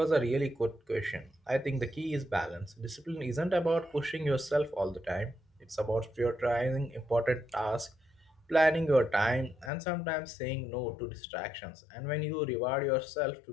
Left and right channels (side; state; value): right; drops out; at 9.7 s